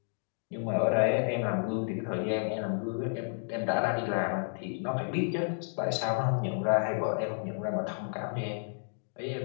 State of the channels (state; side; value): silent; right; digital silence